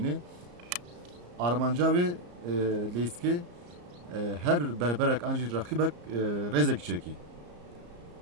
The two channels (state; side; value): late; left; 34 ms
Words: Armanca wê leyskê her berberek an jî raqîbek rêzekî çekî.